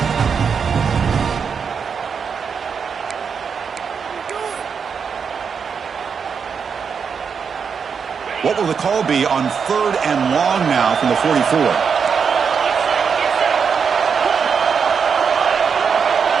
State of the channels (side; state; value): left; quieter; 6.3 dB